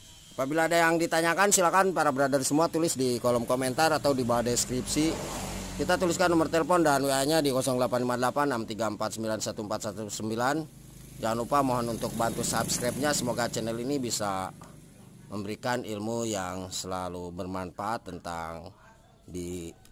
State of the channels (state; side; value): identical; both; correlation 1.00